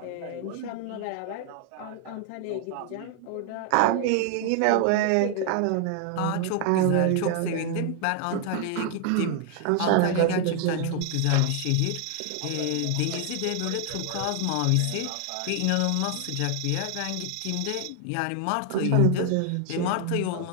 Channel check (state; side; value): different; both; correlation 0.00